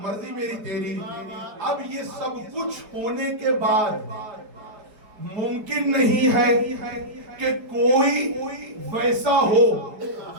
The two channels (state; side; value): late; left; 4.7 ms